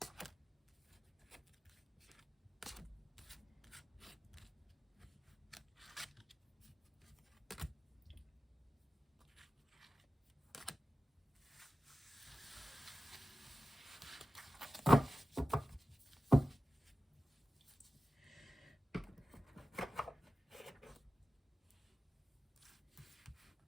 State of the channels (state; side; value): normal; both; correlation 0.94